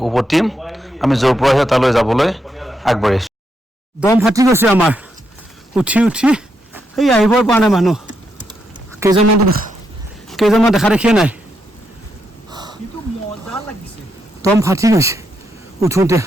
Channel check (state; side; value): normal; both; correlation 0.81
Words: উভতিম আমি য'ৰ পৰা আহে তালৈ যাবলৈ আগবাঢ়িছোঁ দম ফাটি গৈছে আমাৰ উঠি উঠি সেই আহিবই পৰা নাই মানুহ কেইজনমান দেখা দেখিয়ে নাই দম ফাটি গৈছে উঠোঁতে